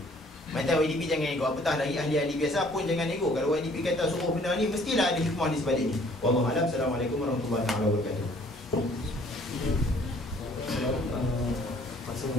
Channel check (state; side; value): normal; both; correlation 0.58